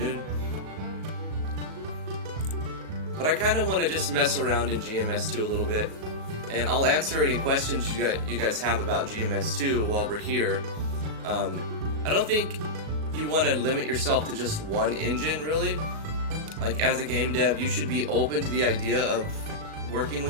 noon. But I kind of want to just mess around in GMS2 a little bit, and I'll answer any questions you guys have about GMS2 while we're here. I don't think you want to limit yourself to just one engine, really. Like, as a game dev, you should be open to the idea of working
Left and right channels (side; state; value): left; late; 37 ms